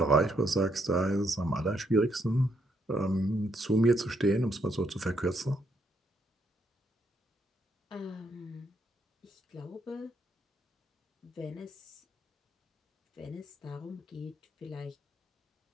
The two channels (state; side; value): normal; both; correlation 0.74